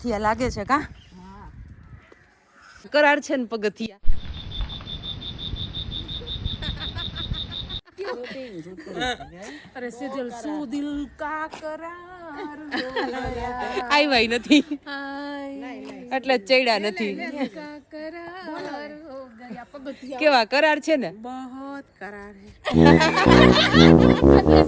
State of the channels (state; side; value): identical; both; correlation 1.00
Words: લાગે છે. કા કરાર છે ને પગથિયા. અરે સેજલ સુ દિલ કા કરાર આઈ નથી, એટલે ચડ્યા નથી. કેવા કરાર છે ને, બહોત કરાર હે.